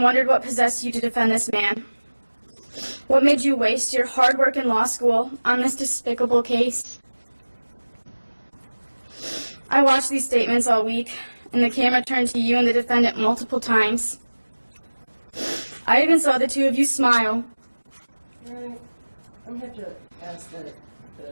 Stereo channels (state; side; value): inverted; both; correlation -1.00